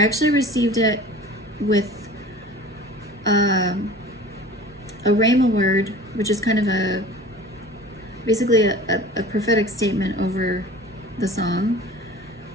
actually received it with a rhema word, which is kind of basically a prophetic statement over the song,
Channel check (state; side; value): normal; both; correlation 0.41